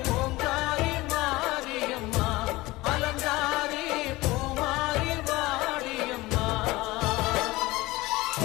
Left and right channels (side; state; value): right; quieter; 20.1 dB